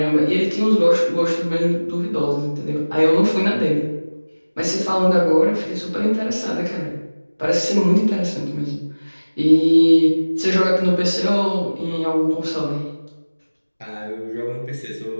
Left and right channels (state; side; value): inverted; both; correlation -1.00